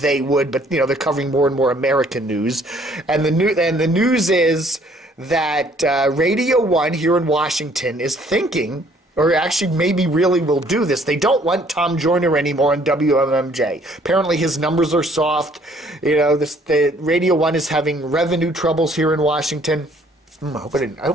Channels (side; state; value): both; normal; correlation 0.61